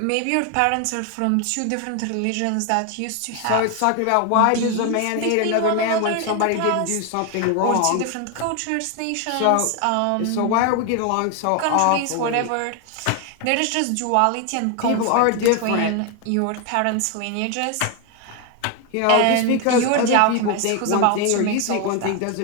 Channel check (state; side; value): different; both; correlation 0.01